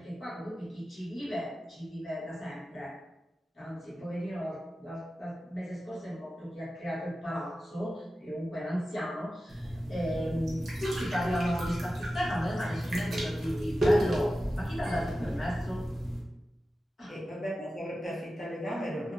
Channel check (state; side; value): normal; both; correlation 0.93